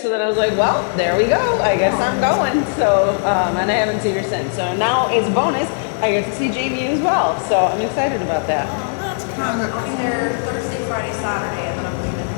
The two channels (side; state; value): right; silent; digital silence